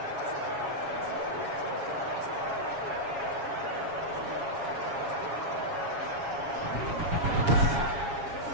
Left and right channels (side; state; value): left; late; 7.2 ms